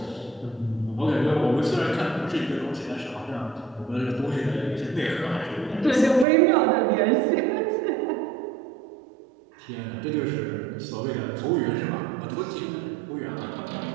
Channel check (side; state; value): left; drops out; at 6.2 s